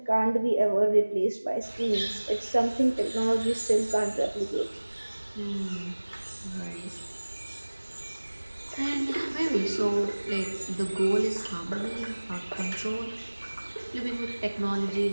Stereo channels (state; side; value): inverted; both; correlation -1.00